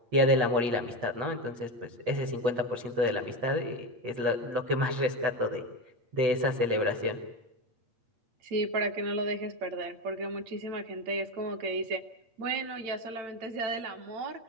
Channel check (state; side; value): late; left; 8.5 ms